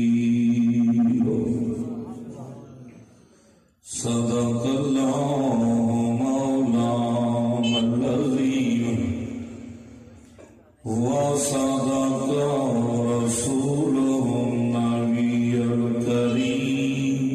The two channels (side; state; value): both; identical; correlation 1.00